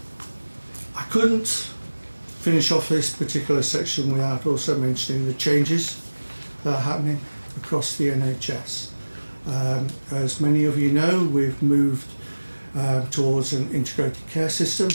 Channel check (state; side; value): inverted; both; correlation -1.00